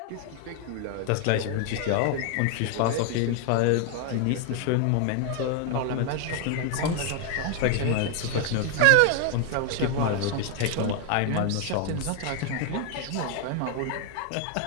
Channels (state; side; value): different; both; correlation 0.00